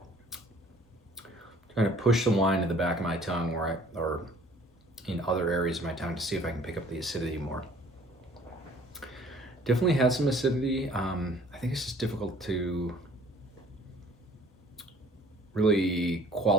Trying to push the wine to the back of my tongue or in other areas of my tongue to see if I can pick up the acidity more. Definitely has some acidity. I think it's just difficult to really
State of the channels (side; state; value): both; normal; correlation 0.54